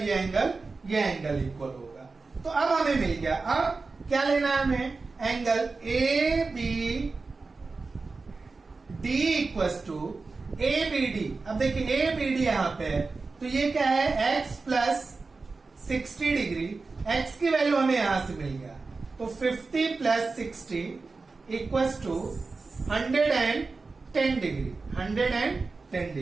एंगल इक्वल होगा। तो अब हमें मिल गया। अब क्या लेना है हमें, angle A B D equals to A B D. अब देखिए ए बी डी यहां पे है, तो ये क्या है, एक्स प्लस 60 डिग्री। एक्स की वैल्यू हमें यहां से मिल गया, तो 50 plus 60 equals to 110 degree, 110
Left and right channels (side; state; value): left; quieter; 4.0 dB